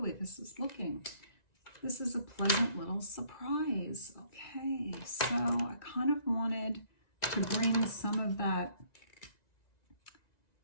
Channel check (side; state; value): right; late; 1.9 ms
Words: way this is looking. This is a pleasant little surprise. Okay, so I kind of wanted to bring some of that.